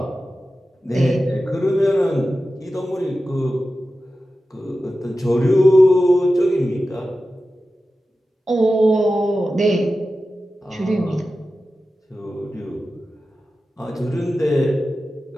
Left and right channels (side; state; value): both; normal; correlation 0.93